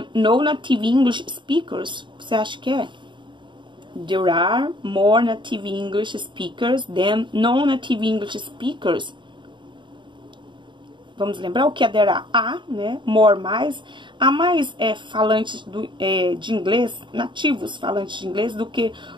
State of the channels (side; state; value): left; late; 0.23 ms